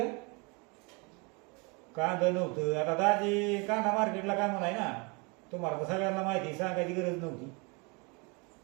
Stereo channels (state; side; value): quieter; left; 30.4 dB